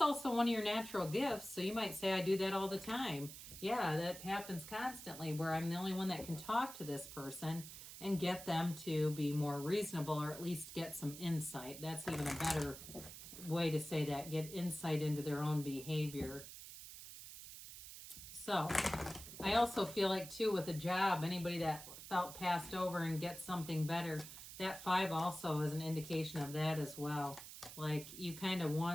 one of your natural gifts. So you might say, I do that all the time. Yeah, that happens constantly, where I'm the only one that can talk to this person and get them to be more reasonable, or at least get some insight. That's even a better way to say that, get insight into their own behavior. So I also feel like too, with a job, anybody that felt passed over and gets something better, that Five also is an indication of that as well. Like you kind of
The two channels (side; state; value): right; noise; hiss, 12 dB below the sound